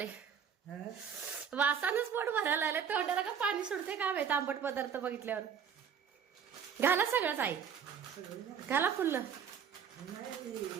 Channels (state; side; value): quieter; left; 7.4 dB